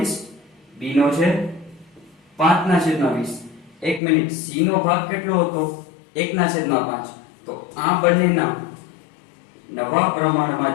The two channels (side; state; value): right; drops out; at 4.0 s